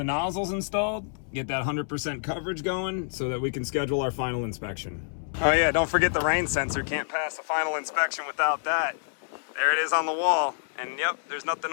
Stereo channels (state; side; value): silent; right; 60 dB below the other